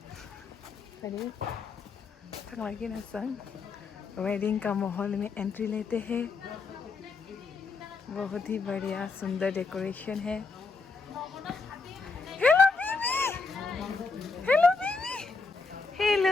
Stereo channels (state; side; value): quieter; right; 4.3 dB